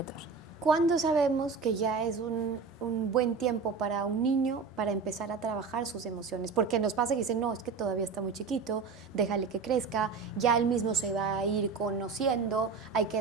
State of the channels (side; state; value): left; quieter; 5.1 dB